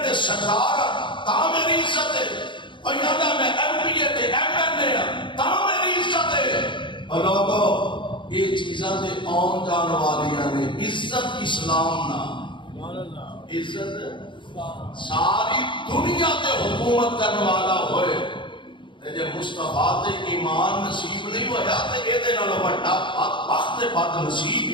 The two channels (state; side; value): late; right; 0.23 ms